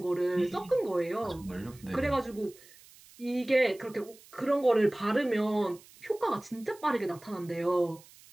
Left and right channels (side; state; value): right; noise; hiss, 24 dB below the sound